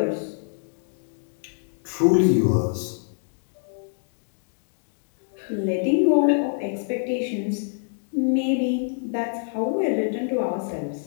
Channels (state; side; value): silent; right; digital silence